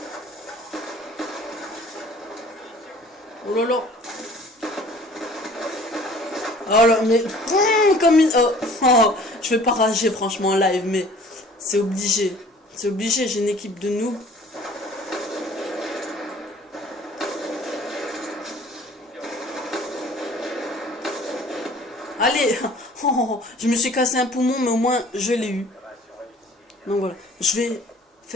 Oh là là. Oh là, mais... comme une... Oh, je vais pas rager franchement en live, mais c'est obligé. C'est obligé, j'ai une équipe de noobs. Allez. Je me suis cassé un poumon, mais au moins je l'ai eu. Donc voilà. je vais...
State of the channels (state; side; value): normal; both; correlation 0.51